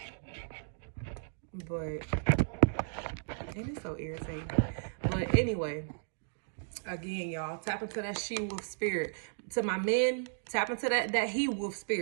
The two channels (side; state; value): left; silent; digital silence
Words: But it is so irritating. But anyway, again, y'all, tap into that she-wolf spirit. To my men, tap into that he-wolf